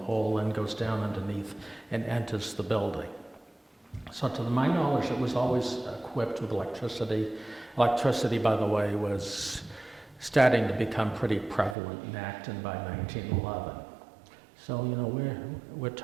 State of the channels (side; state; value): left; drops out; at 11.8 s